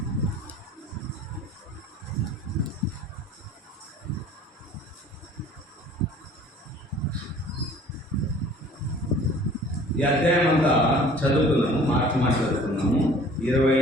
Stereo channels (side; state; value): both; normal; correlation 0.49